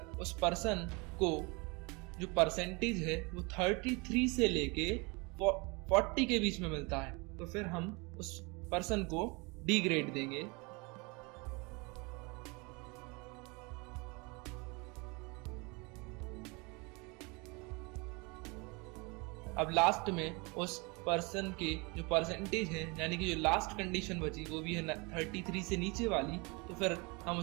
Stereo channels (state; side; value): quieter; left; 28.5 dB